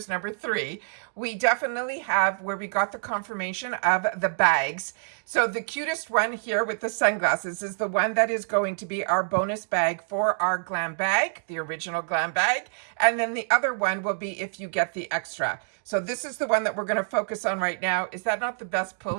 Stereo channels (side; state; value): left; silent; digital silence